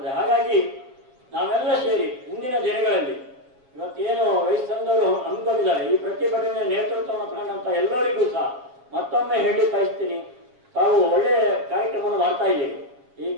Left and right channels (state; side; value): late; left; 7.6 ms